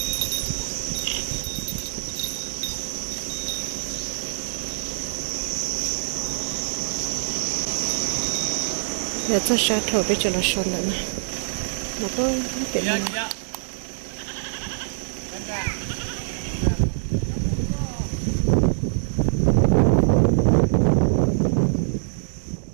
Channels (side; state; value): left; silent; digital silence